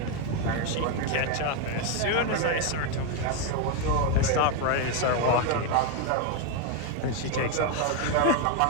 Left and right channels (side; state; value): both; different; correlation 0.01